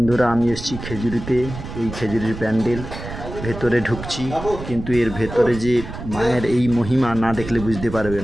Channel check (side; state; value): right; noise; rumble, 10 dB below the sound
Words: আমি এসেছি খেজুরিতে। এই খেজুরির প্যান্ডেল ভেতরে ঢুকছি, কিন্তু এর ভেতরে যে মায়ের এই মহিমা না দেখলে বুঝতে পারবে